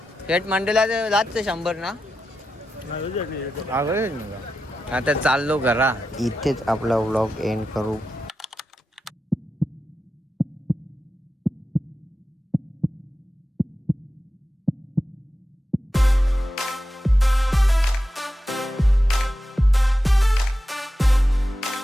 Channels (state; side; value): normal; both; correlation 0.90